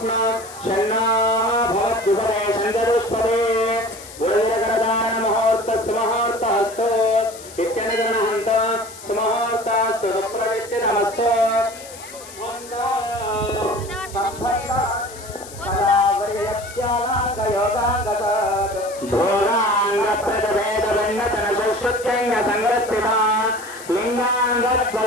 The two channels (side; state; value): left; noise; hiss, 16 dB below the sound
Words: शन्नो भवद्युपदे शन्दरुष्पदे गुरुजगदानमुहूर्तस्सुमुहूर्तस्तु इत्यनुगृह्णन्त सुमुहूर्तस्तु सुप्रविष्टिनमस्तु धोराङ्गप्रदवेदवन्नतनशुश्रुत्यङ्गसङ्गस्थिता